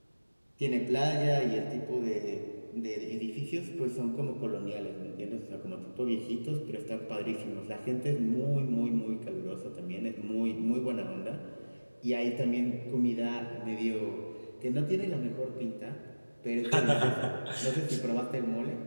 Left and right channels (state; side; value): inverted; both; correlation -1.00